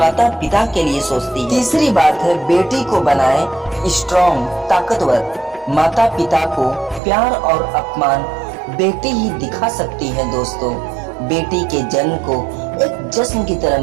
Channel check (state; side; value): drops out; left; at 7.0 s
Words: पिता के लिए सोचती है। तीसरी बात है, बेटी को बनाए स्ट्रॉन्ग, ताकतवर। माता पिता को प्यार और अपमान बेटी ही दिखा सकती है दोस्तों। बेटी के जन्म को एक जश्न की तरह